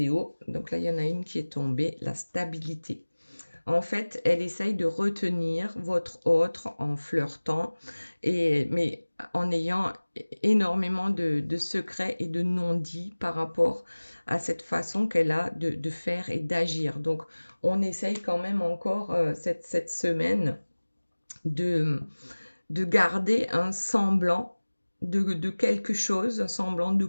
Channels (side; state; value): both; inverted; correlation -1.00